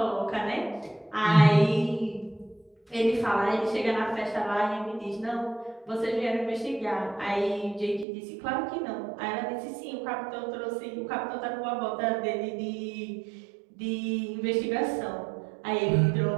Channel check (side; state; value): left; drops out; at 8.1 s